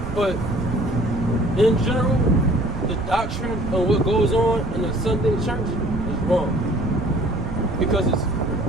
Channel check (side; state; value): right; noise; rumble, 7 dB below the sound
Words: but in general, the doctrine of what goes on in the Sunday church is wrong because it's